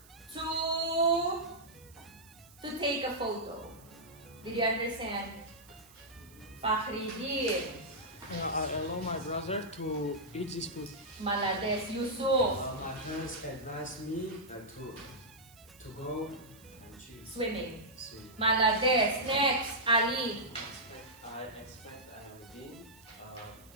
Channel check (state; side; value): noise; right; hiss, 24 dB below the sound